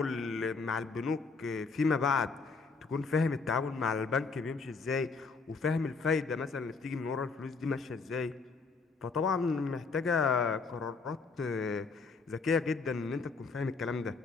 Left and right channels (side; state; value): right; quieter; 4.5 dB